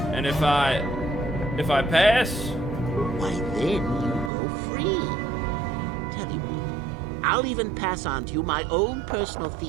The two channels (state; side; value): drops out; left; at 4.3 s